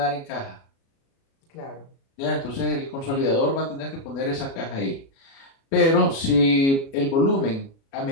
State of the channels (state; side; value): late; right; 36 ms